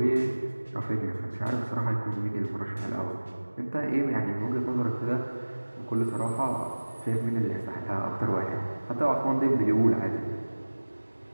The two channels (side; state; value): both; inverted; correlation -1.00